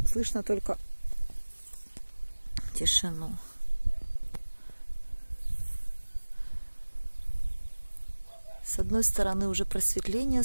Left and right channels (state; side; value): inverted; both; correlation -1.00